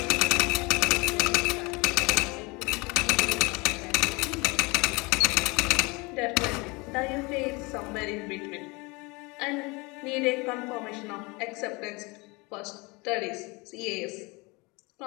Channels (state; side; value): quieter; right; 26.4 dB